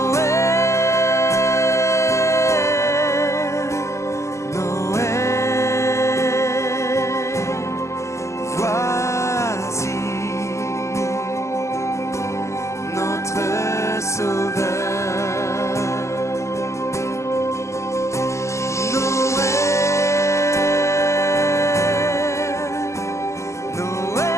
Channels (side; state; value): right; late; 0.14 ms